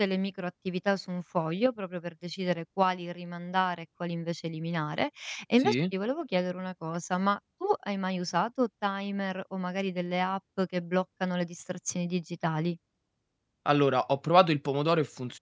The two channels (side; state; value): both; identical; correlation 1.00